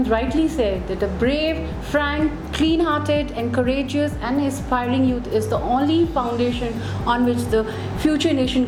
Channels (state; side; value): identical; both; correlation 1.00